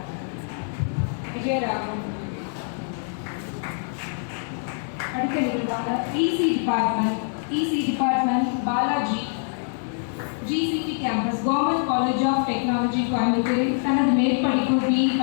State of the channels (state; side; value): silent; right; digital silence